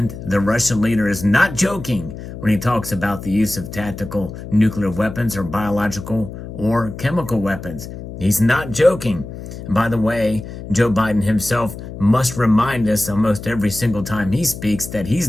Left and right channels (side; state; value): left; noise; hum, 11 dB below the sound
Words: the Russian leader is not joking when he talks about the use of tactical nuclear weapons or biological or chemical weapons. He's not joking. And by the way, Joe Biden himself must remind us almost every single time he speaks that he's